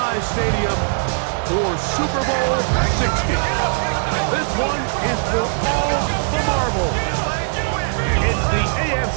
Stadium for Super Bowl 60. This one is for all the marbles. It's the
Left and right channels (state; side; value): silent; left; digital silence